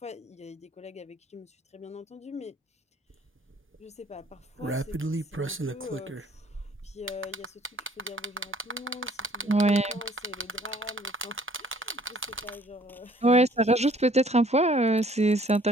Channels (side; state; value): both; normal; correlation 0.57